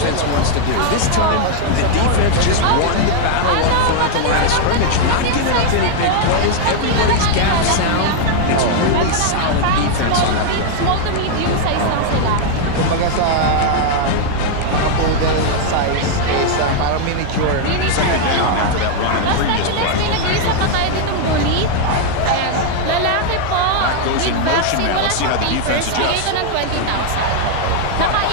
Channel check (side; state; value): both; different; correlation 0.00